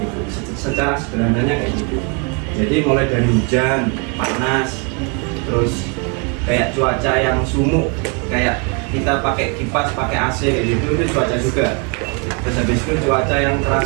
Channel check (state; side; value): quieter; left; 33.9 dB